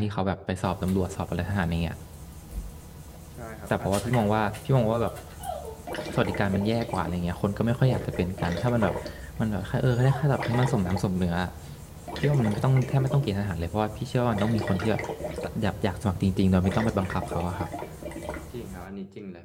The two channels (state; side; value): identical; both; correlation 1.00